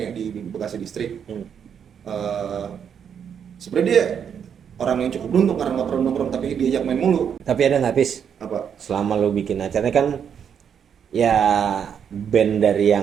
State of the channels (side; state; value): left; quieter; 7.8 dB